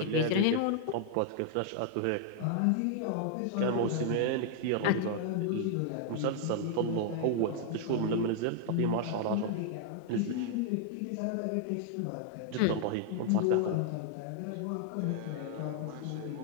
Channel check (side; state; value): both; different; correlation 0.00